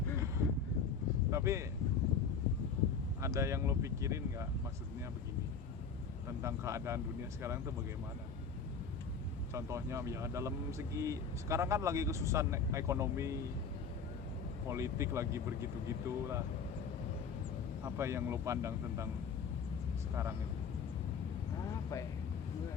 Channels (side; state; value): right; quieter; 5.6 dB